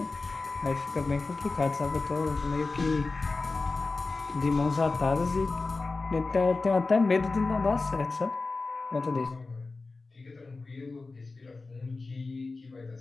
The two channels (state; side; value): quieter; right; 3.7 dB